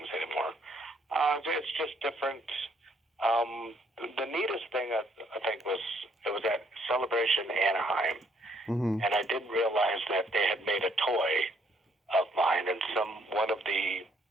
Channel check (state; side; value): normal; both; correlation 0.68